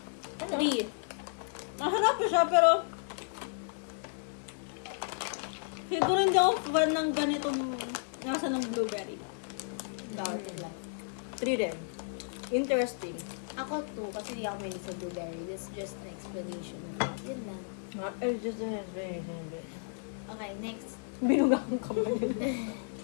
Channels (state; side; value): silent; right; 56 dB below the other